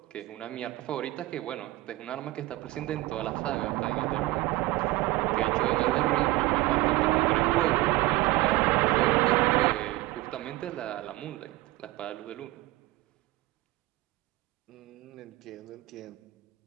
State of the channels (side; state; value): left; quieter; 18.9 dB